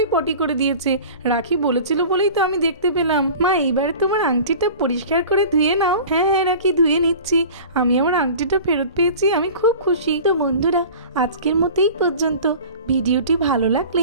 পটি করে দিয়েছে। রাখি বলেছিল বলেই তো আমি দেখতে পেলাম। মা, এইবার তোমার আংটিটা পরিষ্কার করে ধুয়ে নাও। হ্যাঁ হ্যাঁ রাখি, ধুয়ে নিচ্ছি। আমি আমার আংটিটা ফেরত পেয়েছি, আমি খুব খুশি। তো বন্ধুরা, আজকের মতোই পর্যন্ত। ভিডিওটি ভালো লাগলে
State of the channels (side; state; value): both; inverted; correlation -0.39